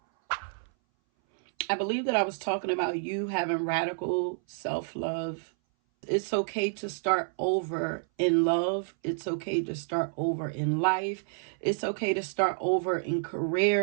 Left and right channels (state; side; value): silent; left; 58 dB below the other